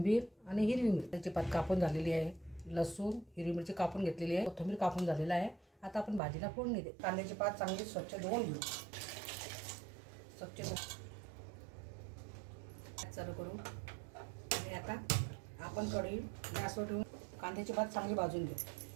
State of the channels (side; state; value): left; drops out; at 6.2 s